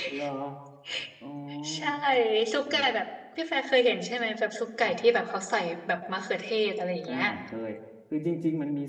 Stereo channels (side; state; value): both; identical; correlation 1.00